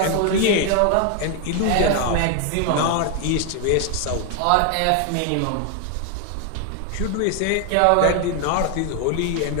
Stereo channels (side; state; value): both; different; correlation 0.00